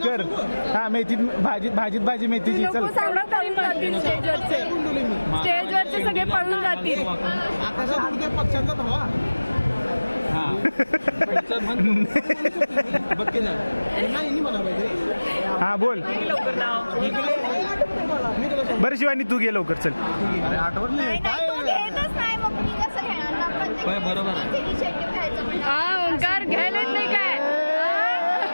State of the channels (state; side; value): inverted; both; correlation -1.00